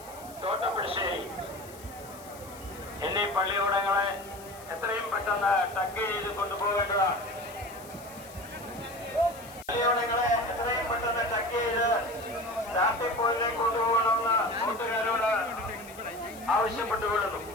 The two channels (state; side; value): noise; left; hiss, 19 dB below the sound